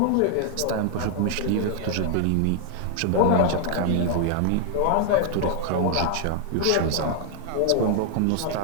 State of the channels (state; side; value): different; both; correlation 0.00